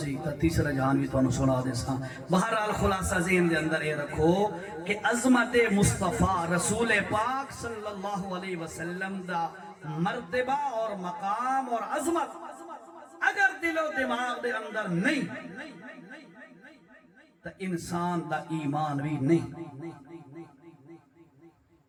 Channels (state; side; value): identical; both; correlation 1.00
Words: تا تیسرا جہان بھی تو سنا دے ساں۔ بہرحال خلاصہ ذہن دے اندر یہ رکھو کہ عظمت مصطفیٰ رسول پاک صلی اللہ علیہ وسلم دا مرتبہ اور مقام اور عظمت اگر دل و دماغ دے اندر نہیں تو انسان دا ایمان بھی نہیں۔